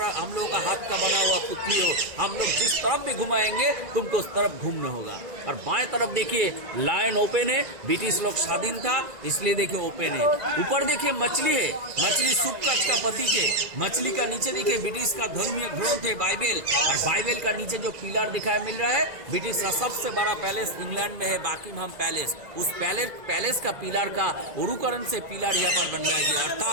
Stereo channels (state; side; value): late; left; 1.9 ms